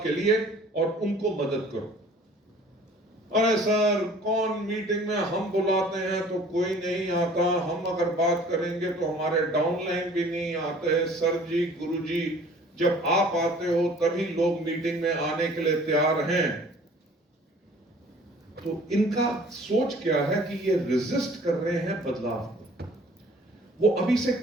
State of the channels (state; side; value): normal; both; correlation 0.51